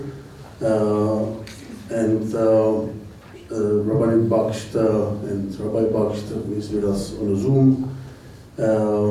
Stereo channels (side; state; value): both; identical; correlation 1.00